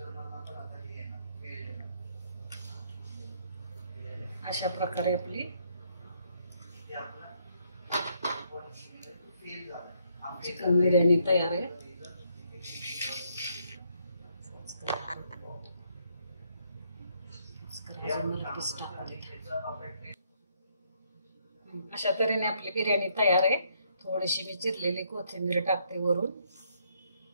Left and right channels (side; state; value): both; inverted; correlation -0.71